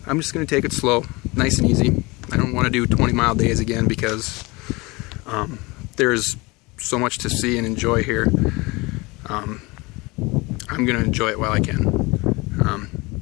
just going to take it slow, nice and easy. I don't want to do 20-mile days again because there's so much to see and enjoy here. I'm going to enjoy it while I can.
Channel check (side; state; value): right; quieter; 24.4 dB